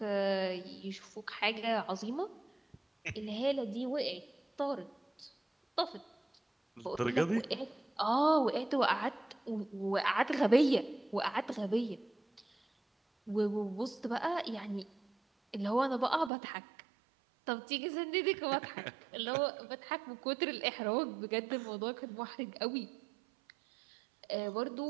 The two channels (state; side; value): drops out; left; at 16.3 s